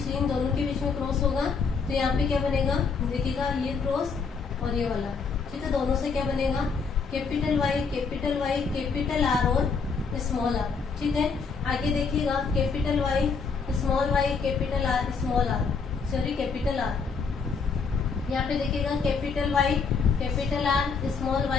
इन दोनों के बीच में क्रॉस होगा, तो यहाँ पे क्या बनेगा, देखिएगा ये क्रॉस और ये वाला। ठीक है, दोनों से क्या बनेगा, कैपिटल वाई कैपिटल आर और स्मॉल आर। ठीक है, आगे देखिएगा capital Y capital R small R, sorry capital R. यहाँ पे देखिएगा capital Y capital R small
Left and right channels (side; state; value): right; quieter; 5.2 dB